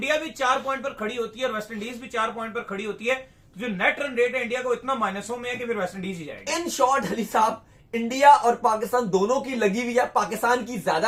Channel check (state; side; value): identical; both; correlation 1.00